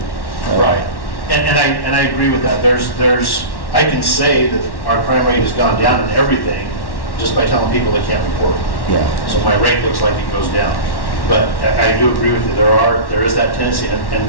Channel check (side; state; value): right; late; 1.1 ms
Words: Right. And I agree with that. I can say that our crime rate has gone down in everything just by telling people they can't report. Yeah. So my rate looks like it goes down. But I do agree with you. There is that tendency, and